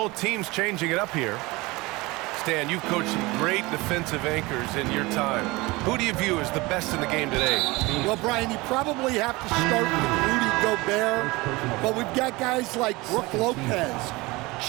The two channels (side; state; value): left; quieter; 22.6 dB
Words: teams changing it up here. Stan, you've coached some great defensive anchors in your time. Who do you view as the best in the game today? Well, Brian, you probably have to start with Rudy Gobert, but we've got guys like Brook Lopez,